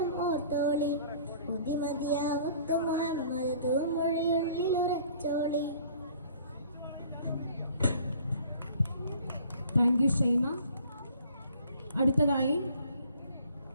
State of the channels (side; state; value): both; inverted; correlation -0.53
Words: ഓർത്തോളി. മതിമതിയാവുത്ത് മുഹമ്മദ് തൂമൊഴിയുള്ളിൽ ഉറച്ചോളി. Thank you Shaima. അടുത്തതായി